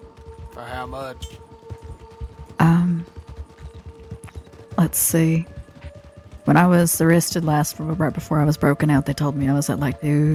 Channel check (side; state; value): both; identical; correlation 1.00